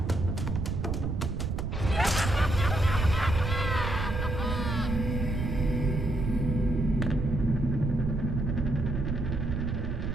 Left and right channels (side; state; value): right; noise; rumble, 1 dB below the sound